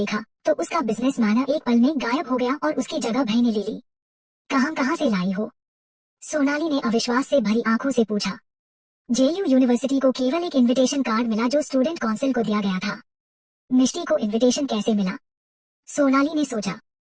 तो उसका बिजनेस मैनर एक पल में गायब हो गया और उसकी जगह भय ने ले ली। कहाँ से लाई हो? सोनाली ने अविश्वास से भरी आंखों से पूछा। जेयू यूनिवर्सिटी को केवल एक इनविटेशन कार्ड मिला जो स्टूडेंट काउंसिल को दिया गया था। मिष्टी को इनविटेशन कैसे मिला? सोनाली ने सोचा।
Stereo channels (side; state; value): both; identical; correlation 1.00